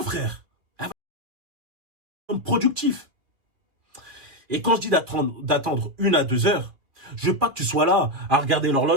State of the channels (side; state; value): left; late; 2.6 ms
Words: frère. Productif. Et quand je dis d'attendre 1 à 2 heures, je veux pas que tu sois là à regarder